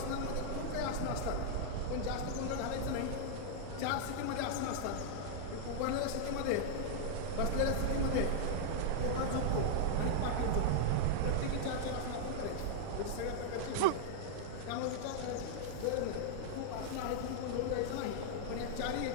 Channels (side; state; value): both; different; correlation -0.01